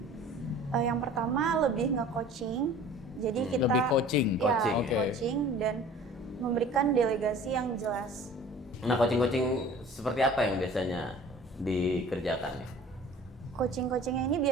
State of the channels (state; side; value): normal; both; correlation 0.46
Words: Yang pertama lebih nge-coaching. Jadi kita Lebih coaching. coaching dan memberikan delegasi yang jelas. Nah, coaching seperti apa yang biasanya dikerjakan? Coaching-coachingnya ini